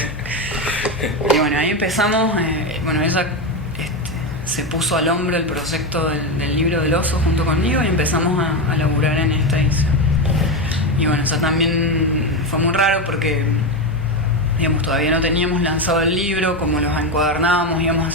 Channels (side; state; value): both; normal; correlation 0.13